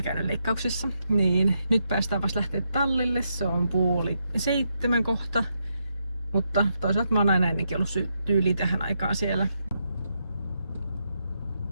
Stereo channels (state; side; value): inverted; both; correlation -0.82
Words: käynyt leikkauksessa, niin nyt päästään vasta lähteä tallille, se on 6:30 kohta. Mutta toisaalta mä oon aina ennenkin ollut tyyli tähän aikaan siellä.